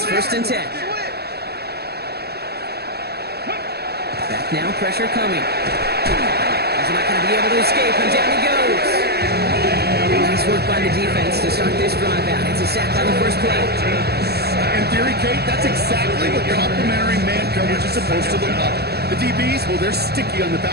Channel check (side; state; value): left; late; 0.47 ms